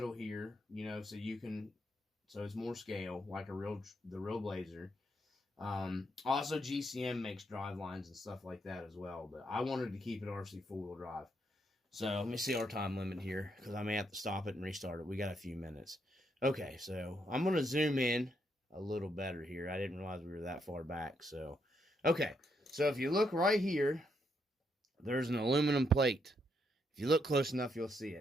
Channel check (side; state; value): both; normal; correlation 0.77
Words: here, so it's more scale, like the real Blazer. Also, GCM makes drive lines and stuff like that as well, but I wanted to keep it Rc4wd Drive. So let me see our time limit here, because I may have to stop it and restart it. We got a few minutes. Okay, so I'm going to zoom in a little better here. I didn't realize we were that far back. So, okay, so if you look right here, there's an aluminum plate. If you look close enough, you'll see